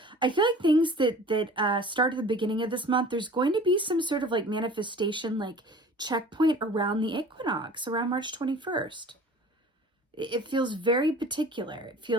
I feel like things that start at the beginning of this month, there's going to be some sort of like manifestation, like checkpoint around the equinox, around March 21st. It feels very particular. It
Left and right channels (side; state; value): both; normal; correlation 0.44